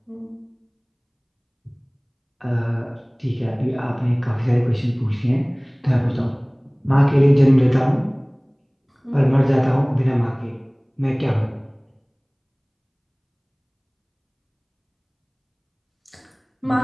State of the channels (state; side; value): identical; both; correlation 1.00